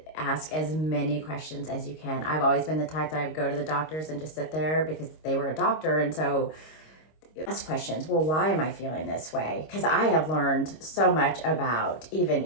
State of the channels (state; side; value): late; right; 26 ms